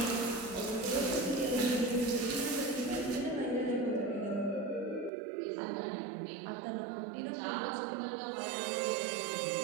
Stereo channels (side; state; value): left; drops out; at 5.1 s